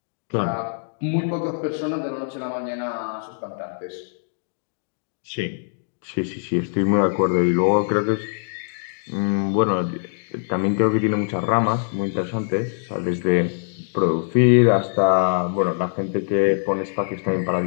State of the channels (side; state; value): right; silent; digital silence